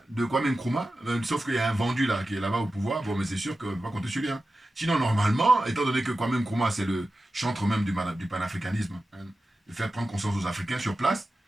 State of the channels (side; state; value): both; normal; correlation 0.93